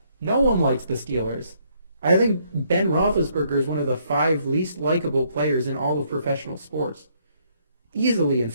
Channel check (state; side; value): inverted; both; correlation -0.70